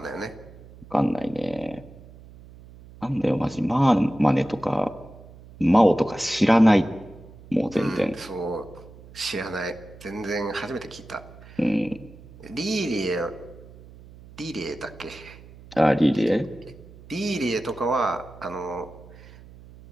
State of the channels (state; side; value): noise; right; hum, 20 dB below the sound